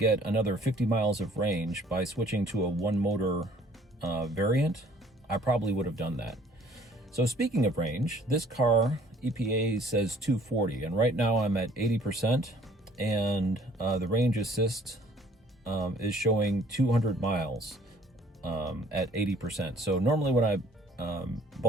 another 50 miles of range by switching to a one motor variant, I probably would have done that. So speaking of range, this car, EPA says 240, and right now I'm at 80%, and the range assist is showing 200 miles at 80%. So normally when I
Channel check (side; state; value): both; normal; correlation 0.56